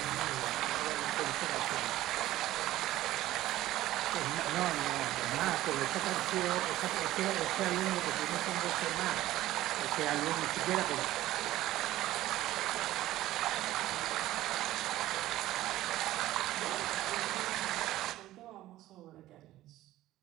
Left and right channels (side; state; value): left; quieter; 15.2 dB